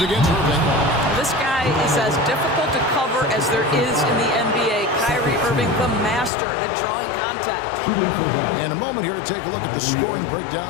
against Irving. This guy is as difficult to cover as there is in the NBA. Kyrie Irving, the master at drawing contact. And a moment here to take a look at the scoring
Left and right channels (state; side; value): drops out; right; at 6.3 s